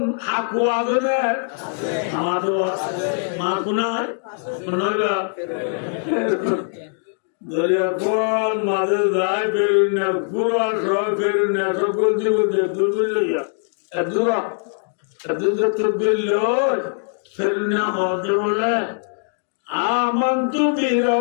হাকু আছে না আমাদের মা কোনায় নয়বা দরিয়া কোন মাঝে যায় ফেরুনিয়া পুরা সব ফেরুনিয়া সকল জীবন দূর লইয়া দূরা আমন্তু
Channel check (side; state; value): right; silent; digital silence